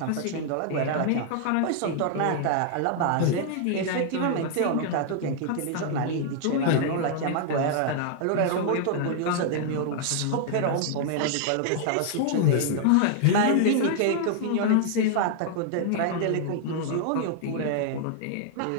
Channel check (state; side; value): different; both; correlation -0.01